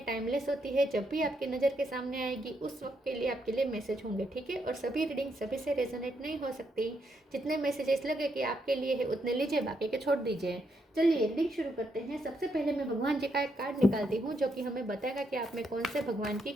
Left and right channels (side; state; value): both; normal; correlation 0.78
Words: टाइमलेस होती है। जब भी आपकी नज़र के सामने आएगी उस वक्त के लिए आपके लिए मैसेज होंगे, ठीक है। और सभी रीडिंग सभी से रेजोनेट नहीं हो सकती। जितने मैसेजेस लगे कि आपके लिए है उतने लीजिए, बाकी के छोड़ दीजिए। चलिए रीडिंग शुरू करते हैं। सबसे पहले मैं भगवान जी का एक कार्ड निकालती हूँ जो कि हमें बताएगा कि आप में कौन से भगवान की